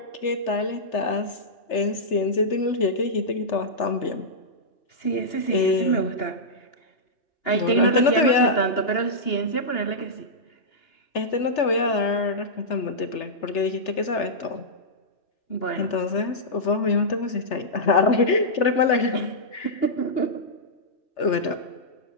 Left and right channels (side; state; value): right; late; 3.3 ms